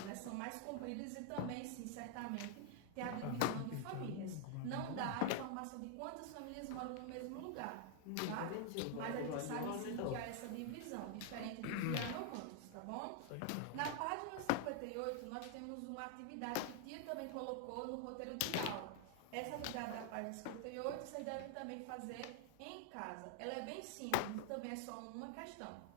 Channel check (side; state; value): both; different; correlation 0.00